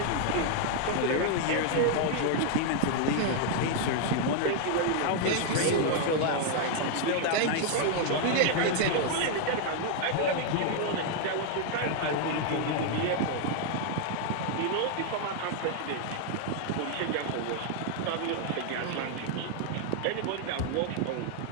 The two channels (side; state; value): both; different; correlation 0.00